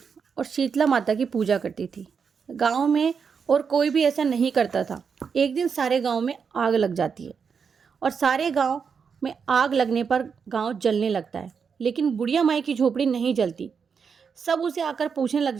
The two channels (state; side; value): quieter; left; 6.2 dB